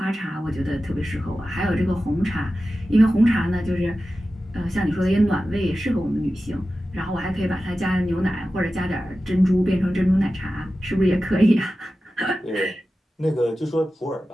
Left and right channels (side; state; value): both; normal; correlation 0.94